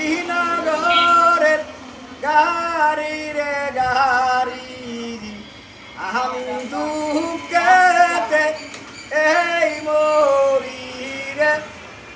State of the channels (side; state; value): both; identical; correlation 1.00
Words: গাড়ি রে গাড়ি আমি দুঃখেতে এই মরি রে